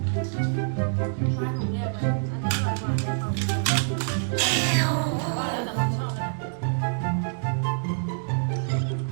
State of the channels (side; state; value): left; silent; digital silence